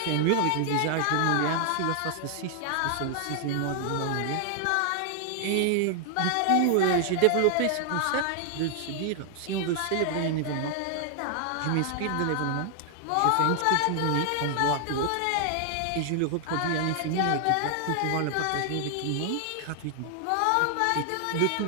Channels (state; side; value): different; both; correlation 0.00